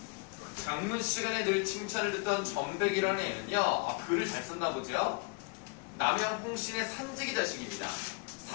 장문 시간에 늘 칭찬을 듣던 전백이라는 애는요, 글을 잘 썼나 보죠? 남양 홍신의 삼직이 자식입니다.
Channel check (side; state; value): right; quieter; 33.5 dB